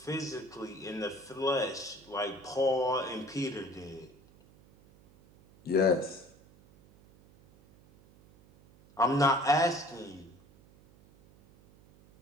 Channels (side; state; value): right; noise; hum, 26 dB below the sound